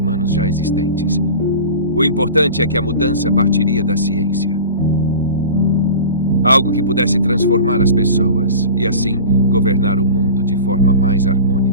já existentes. O importante é que a mudança partiria da ciência. Algo que pudesse transformar as pessoas e, assim, governar o mundo de forma mais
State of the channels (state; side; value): inverted; both; correlation -0.36